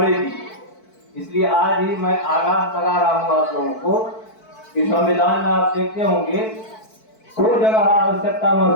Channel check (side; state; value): right; late; 4.5 ms